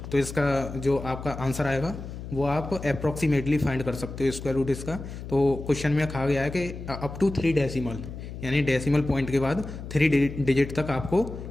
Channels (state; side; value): noise; left; hum, 10 dB below the sound